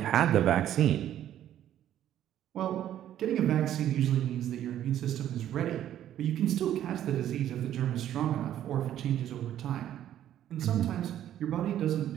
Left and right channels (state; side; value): quieter; left; 11.5 dB